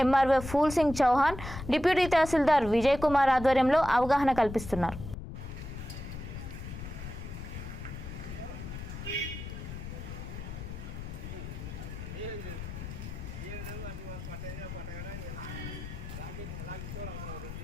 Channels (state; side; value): noise; left; rumble, 9 dB below the sound